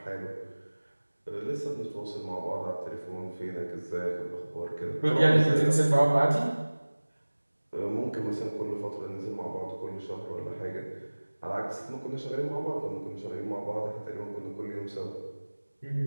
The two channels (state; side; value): inverted; both; correlation -1.00